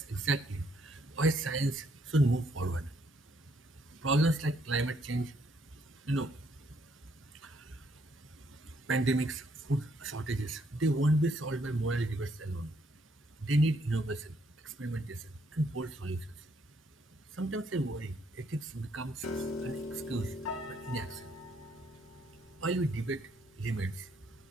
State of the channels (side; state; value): both; normal; correlation 0.70